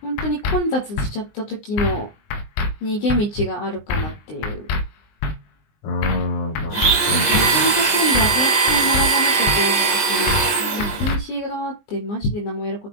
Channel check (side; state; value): right; late; 20 ms